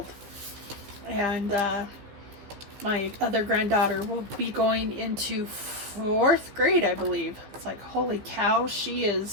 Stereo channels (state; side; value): late; left; 15 ms